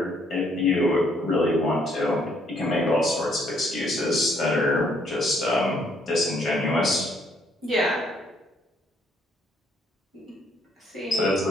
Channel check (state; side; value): normal; both; correlation 0.68